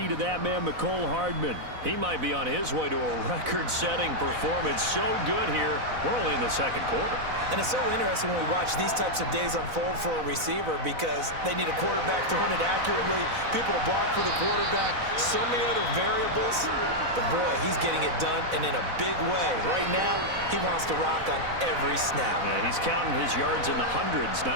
of that man, Mecole Hardman. He might be on his way to a record-setting performance. So good here. We're only in the second quarter. And it's so interesting when we watch these types of days unfold for a receiver because they need a quarterback throwing it accurately, people to block for the quarterback, so many other variables. But, boy, he's getting it done and in a big way. Right now, he wants to rock on every snap. Yeah, he's counting his yards in the hundreds,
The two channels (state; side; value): late; left; 4.0 ms